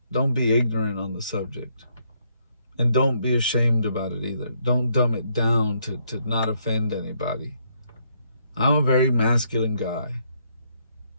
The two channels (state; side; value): inverted; both; correlation -0.73